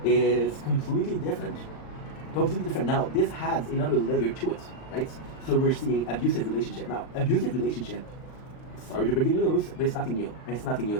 is completely different. Completely different. Now, this adds another layer to it, right? So we're seeing abusive relationship. Now, abusive relationship, sorry to break the news, but it's nothing new. It's nothing new.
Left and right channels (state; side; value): late; right; 39 ms